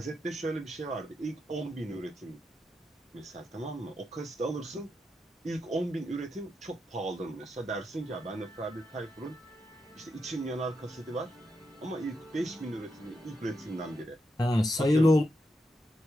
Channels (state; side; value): normal; both; correlation 0.84